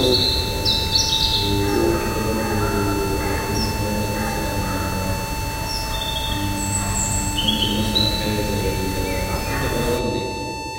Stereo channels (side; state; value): both; identical; correlation 1.00